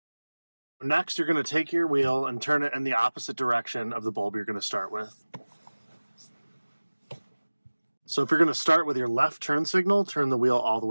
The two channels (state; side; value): inverted; both; correlation -1.00